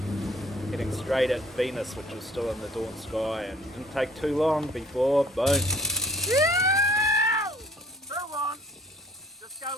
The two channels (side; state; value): both; normal; correlation 0.57